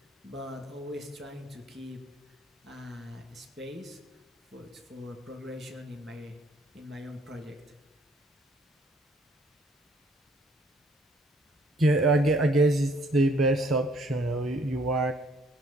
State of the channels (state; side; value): normal; both; correlation 0.62